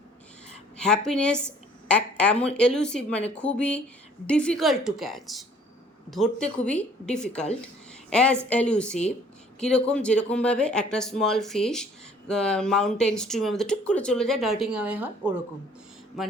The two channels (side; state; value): both; normal; correlation 0.56